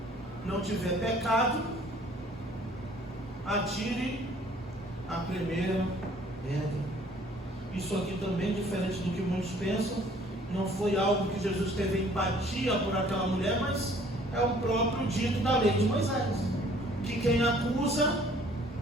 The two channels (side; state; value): both; normal; correlation 0.56